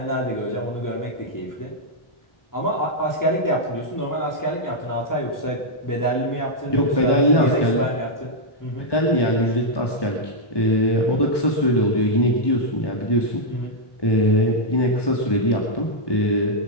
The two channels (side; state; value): right; late; 1.2 ms